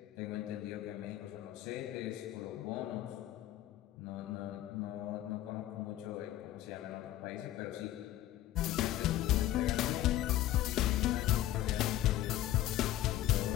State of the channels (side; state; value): right; quieter; 13.9 dB